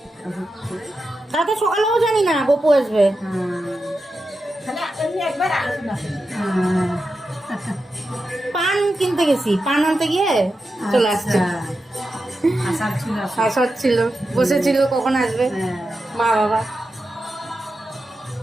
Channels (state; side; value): normal; both; correlation 0.90